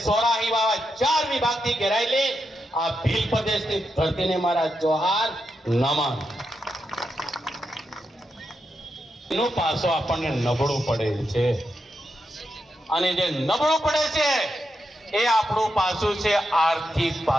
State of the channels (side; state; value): both; normal; correlation 0.85